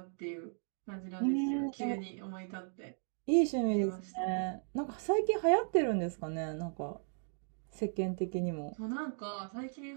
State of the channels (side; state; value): left; silent; 54 dB below the other